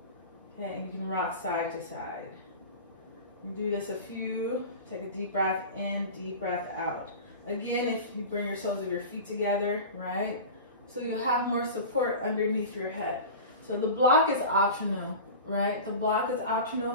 Okay, and you can rock side to side. You do this a few. Take a deep breath in, deep breath out. Again, if you bring your soles of your feet together, right? So you have more support underneath your head. So the block is optional, right? The block is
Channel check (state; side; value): inverted; both; correlation -0.32